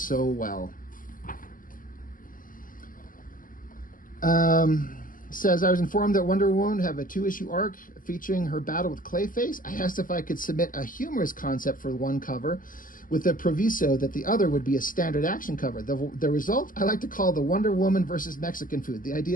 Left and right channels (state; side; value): late; right; 0.40 ms